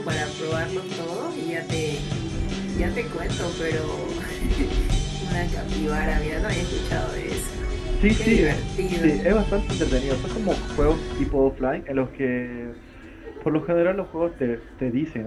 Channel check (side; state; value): both; identical; correlation 1.00